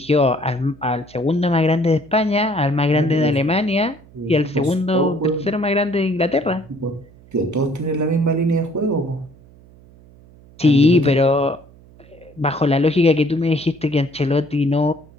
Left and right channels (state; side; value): noise; right; hum, 25 dB below the sound